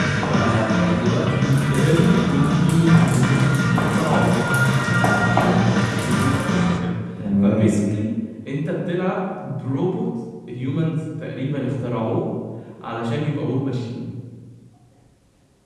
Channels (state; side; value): identical; both; correlation 1.00